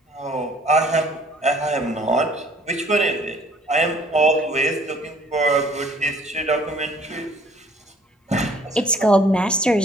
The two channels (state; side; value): normal; both; correlation 0.57